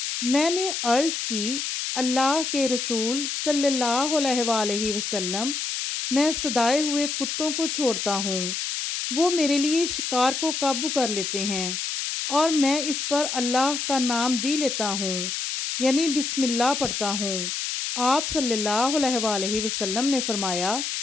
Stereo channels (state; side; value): noise; left; hiss, 3 dB below the sound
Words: میں نے عرض کی، اللہ کے رسول صلی اللہ علیہ وآلہ وسلم، میں صدائے ہوئے کتوں کو چھوڑتا ہوں، وہ میرے لیے شکار کو قابو کر لیتے ہیں، اور میں اس پر اللہ کا نام بھی لیتا ہوں، یعنی بسم اللہ پڑھتا ہوں۔ آپ صلی اللہ علیہ وآلہ وسلم نے فرمایا،